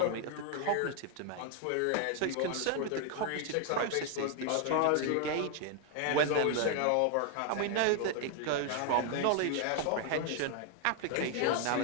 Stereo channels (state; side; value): different; both; correlation 0.00